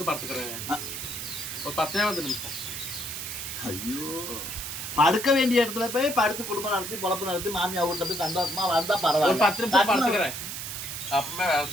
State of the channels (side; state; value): right; noise; hiss, 6 dB below the sound